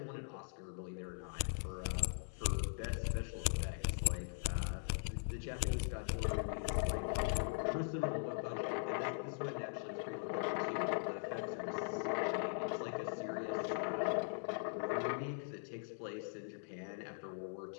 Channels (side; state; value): right; silent; digital silence